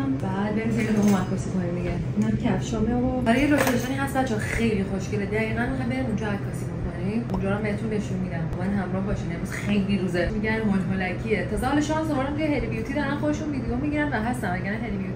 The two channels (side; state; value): both; identical; correlation 1.00